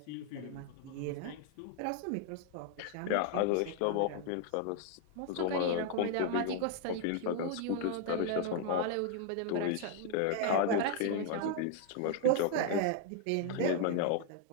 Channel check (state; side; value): different; both; correlation 0.00